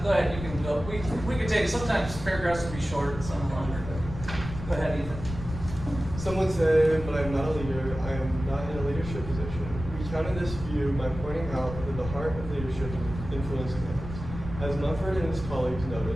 Go ahead, you can go. We could take, sometimes paragraphs will be short, some longer, but go ahead, Ethan. Some would say, but I'm not a leader. I am not in a leadership position. We counter this view by pointing out that the heart of leadership is influencing others. As Mumford and his colleagues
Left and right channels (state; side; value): noise; left; rumble, 10 dB below the sound